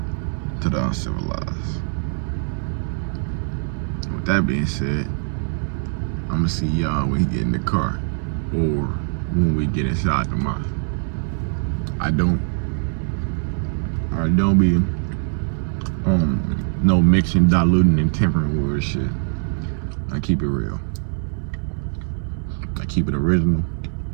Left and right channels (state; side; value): silent; left; 60 dB below the other